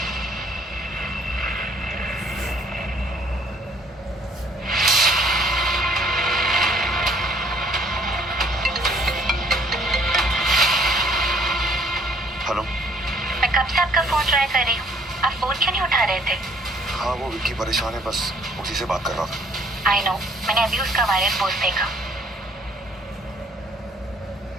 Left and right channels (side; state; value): both; normal; correlation 0.61